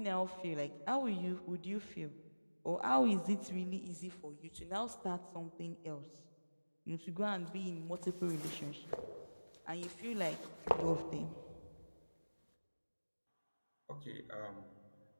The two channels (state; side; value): inverted; both; correlation -1.00